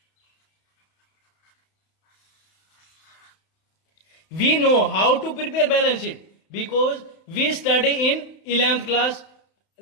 We know how to prepare balance sheet because we study in 11th class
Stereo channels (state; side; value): late; right; 31 ms